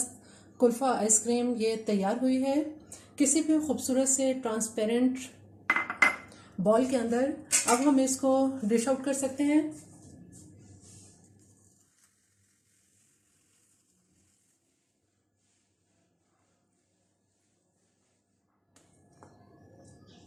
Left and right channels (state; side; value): identical; both; correlation 1.00